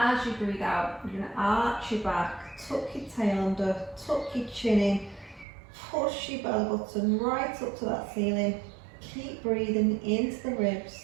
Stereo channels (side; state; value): left; drops out; at 5.5 s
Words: you breathe out, you're going to arch your back, tuck your tail under, tuck your chin in, push your belly button right up to that ceiling. Keep breathing into the ribs.